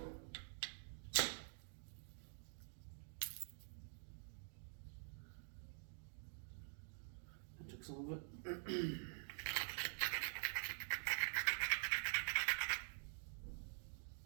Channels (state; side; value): silent; left; digital silence